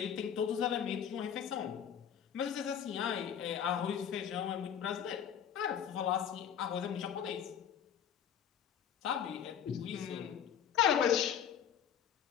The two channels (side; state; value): right; quieter; 8.8 dB